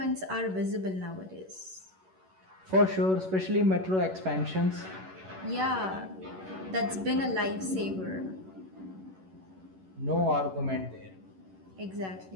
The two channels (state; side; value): late; left; 11 ms